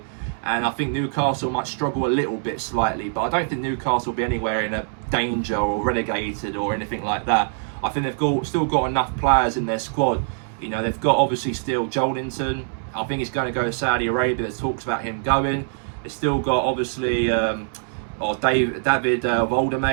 And I think Newcastle might struggle a little bit slightly, but I don't think Newcastle will be anywhere in a danger or relegated or anything like that. I think they've still got enough players in their squad. You know, they've got obviously still Joelinton. I think he's going to go to Saudi Arabia. There's talks about him going. They've still got obviously David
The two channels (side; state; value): left; silent; 63 dB below the other